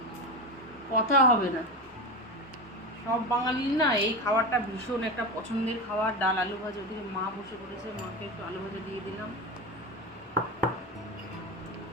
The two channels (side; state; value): both; normal; correlation 0.21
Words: কথা হবে না। সব বাঙালির না এই খাবারটা ভীষণ একটা পছন্দের খাবার, ডাল আলু ভাজা। ওদিকে মা বসে পড়েছে, মাকে একটু আলু ভাজা দিয়ে দিলাম।